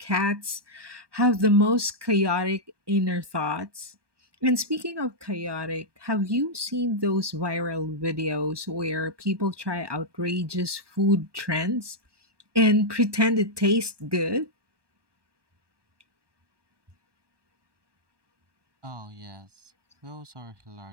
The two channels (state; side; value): late; left; 1.2 ms